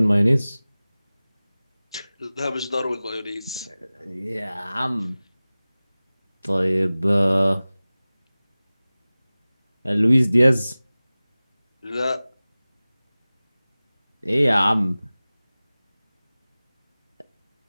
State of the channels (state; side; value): inverted; both; correlation -0.98